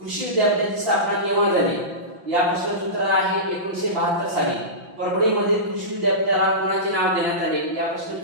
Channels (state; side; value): late; left; 5.8 ms